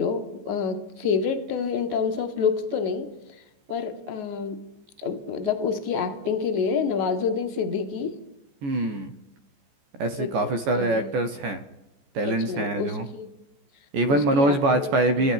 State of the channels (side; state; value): left; late; 14 ms